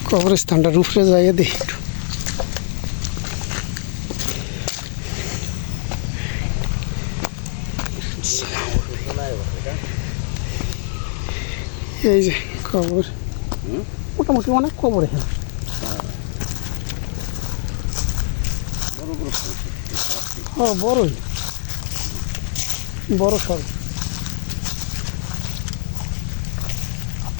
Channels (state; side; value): silent; right; digital silence